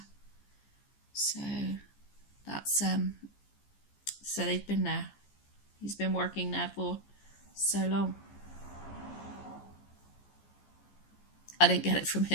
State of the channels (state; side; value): late; right; 15 ms